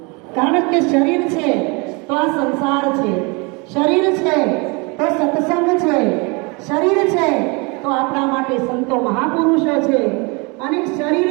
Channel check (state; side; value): quieter; left; 29.4 dB